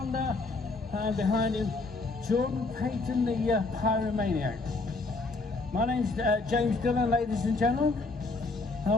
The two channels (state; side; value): quieter; right; 3.6 dB